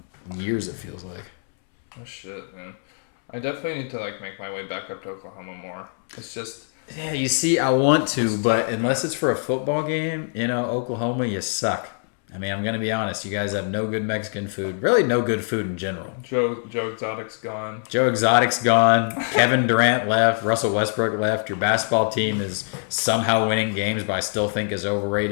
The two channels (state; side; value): silent; right; 63 dB below the other